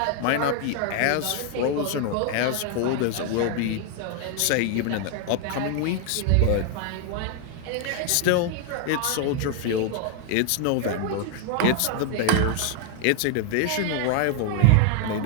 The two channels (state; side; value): different; both; correlation 0.00